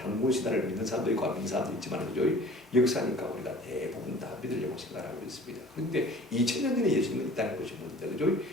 믿는 사람도 있고 안 믿는 사람도 있지만 역사니까 우리가 대부분 다 믿으려고 생각하고 있습니다. 그런데 2,000년 전에 예수님은 이 땅에 오셨는데 그죠?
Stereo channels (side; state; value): both; normal; correlation 0.46